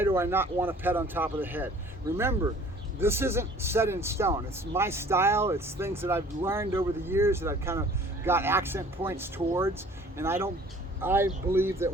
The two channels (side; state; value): both; normal; correlation 0.51